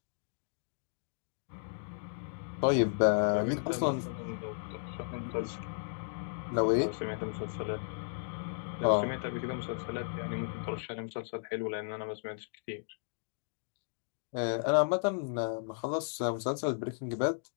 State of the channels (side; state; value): right; silent; digital silence